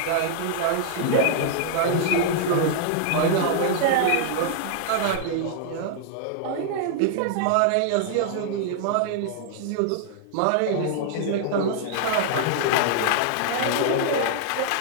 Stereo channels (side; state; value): both; different; correlation -0.01